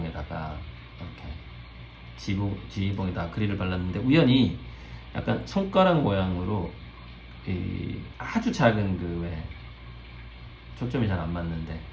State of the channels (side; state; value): both; identical; correlation 1.00